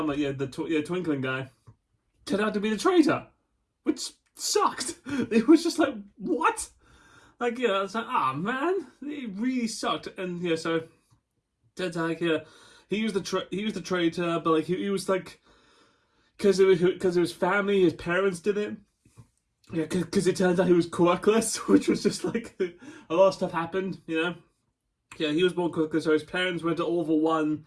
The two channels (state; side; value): identical; both; correlation 1.00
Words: the twinkling guy, turned out to be the traitor, which sucked. It was just like, what? Like, I was like, man, it really sucked. And so turns out, he was the traitor, but like he was like, because it was family, his parents did it. Yeah, because it turns out he was quirkless, which was just like a lot of stuff happened. Yeah, he was born quirkless, so his parents went to All for One